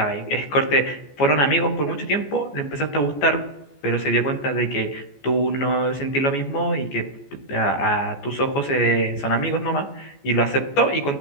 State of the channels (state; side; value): late; right; 14 ms